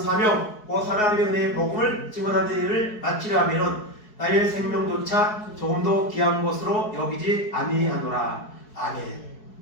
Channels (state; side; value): late; right; 4.7 ms